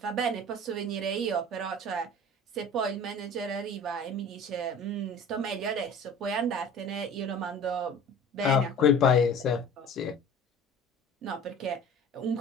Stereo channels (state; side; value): normal; both; correlation 0.42